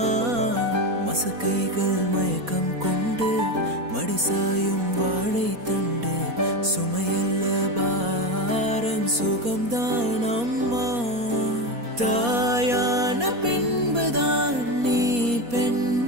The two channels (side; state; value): left; late; 4.2 ms